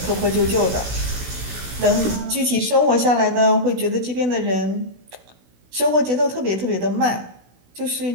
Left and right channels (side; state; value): left; late; 16 ms